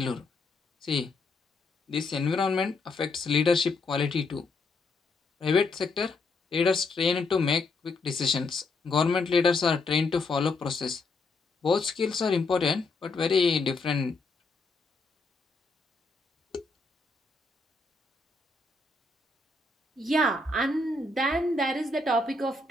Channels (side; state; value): right; quieter; 3.5 dB